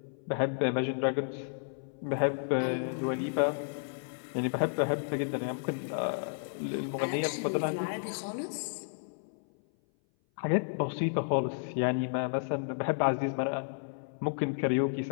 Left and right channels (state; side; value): silent; right; 56 dB below the other